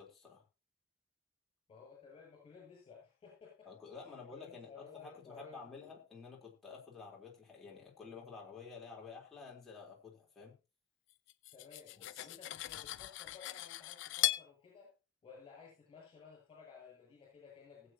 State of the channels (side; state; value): right; quieter; 12.0 dB